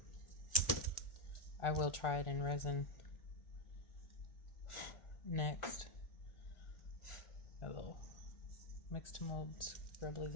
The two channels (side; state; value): right; late; 1.4 ms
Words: I will try it in resin next. A little Mix2Mold scrubblies